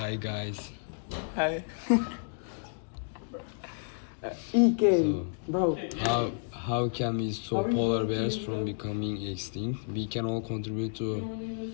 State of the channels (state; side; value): silent; right; digital silence